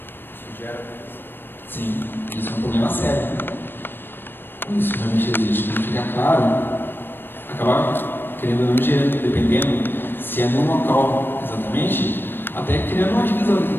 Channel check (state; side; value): late; right; 0.098 ms